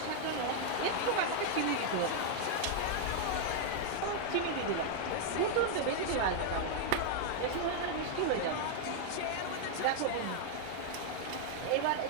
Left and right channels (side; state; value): both; different; correlation 0.00